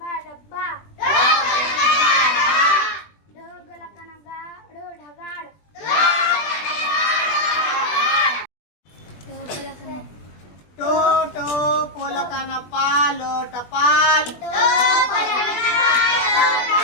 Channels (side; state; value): right; late; 20 ms